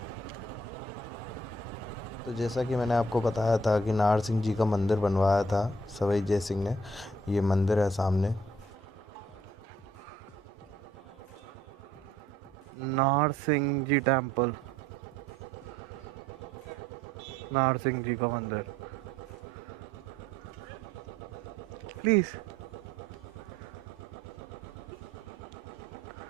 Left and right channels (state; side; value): normal; both; correlation 0.63